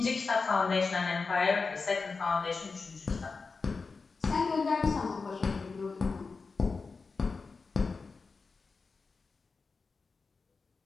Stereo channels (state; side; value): quieter; right; 4.4 dB